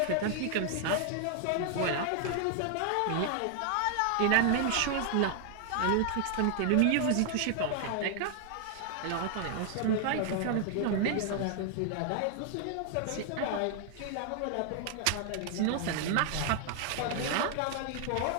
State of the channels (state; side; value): different; both; correlation 0.00